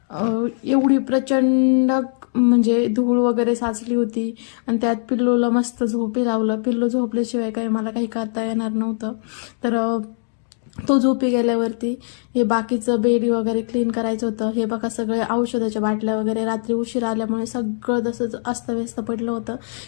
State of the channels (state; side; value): silent; right; digital silence